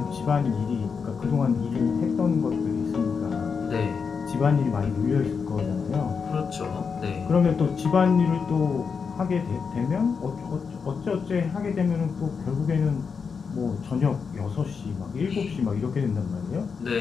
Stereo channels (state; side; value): quieter; right; 5.7 dB